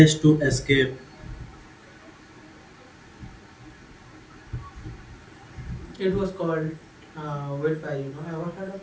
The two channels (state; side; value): identical; both; correlation 1.00